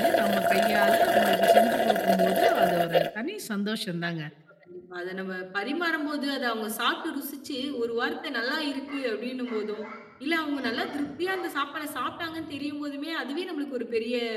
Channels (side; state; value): both; identical; correlation 1.00